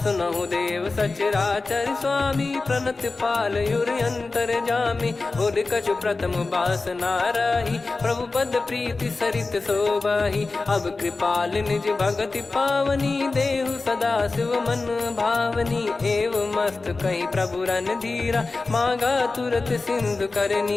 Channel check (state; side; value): quieter; right; 3.7 dB